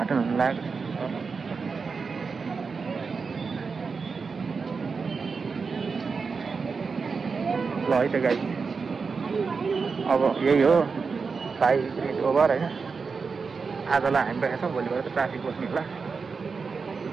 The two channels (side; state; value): left; quieter; 5.0 dB